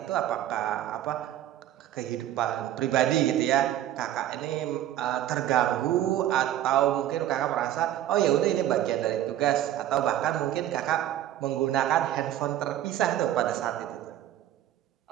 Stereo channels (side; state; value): left; quieter; 12.5 dB